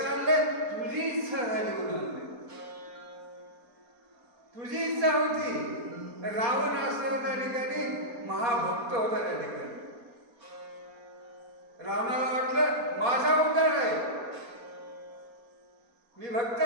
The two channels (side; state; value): left; late; 4.3 ms